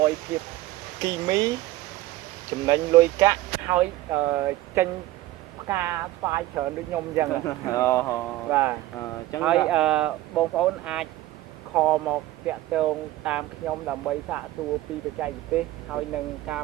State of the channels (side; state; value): left; quieter; 16.5 dB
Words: យភាពគីមីចំណេញលុយកាក់ហើយចេញផ្កាស្វាយច្រើនដូចខ្ញុំអញ្ចឹង បាទអញ្ចឹងហើយបងប្អូនអាចខលមកតាក់ទងតាមខ្ញុំដើម្បីសាកសួរពីបច្ចេកទេសហើយនឹងការ